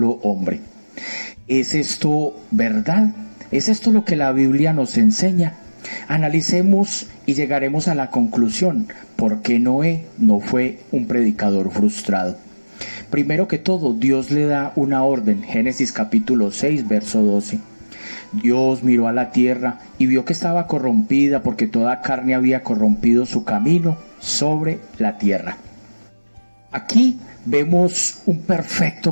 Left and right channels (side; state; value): both; inverted; correlation -1.00